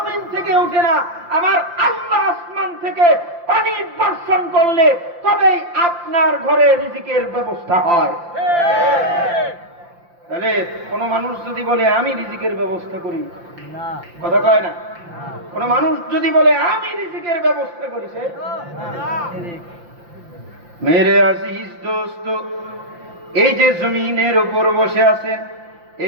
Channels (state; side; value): late; left; 5.8 ms